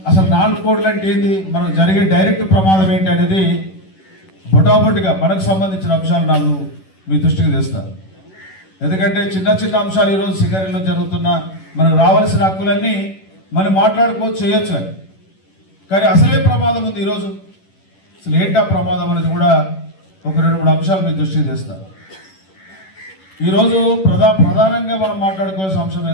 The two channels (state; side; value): late; right; 11 ms